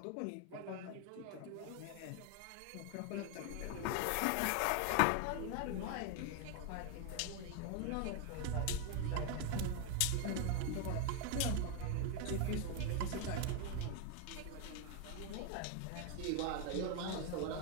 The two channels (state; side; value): different; both; correlation 0.01